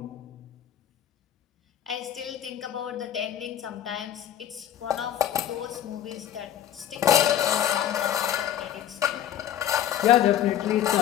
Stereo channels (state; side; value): quieter; right; 10.9 dB